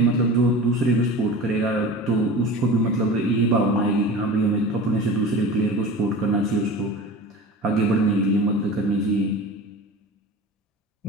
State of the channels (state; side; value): normal; both; correlation 0.34